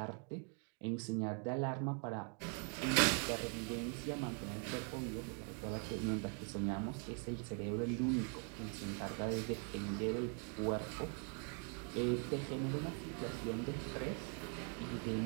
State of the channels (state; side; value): quieter; left; 39.3 dB